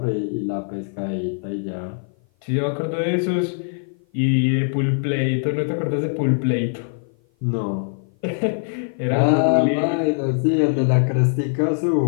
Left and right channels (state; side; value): silent; right; 55 dB below the other